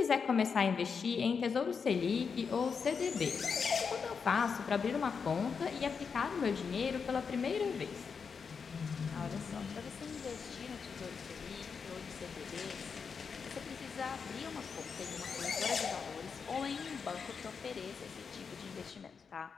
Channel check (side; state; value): right; quieter; 5.8 dB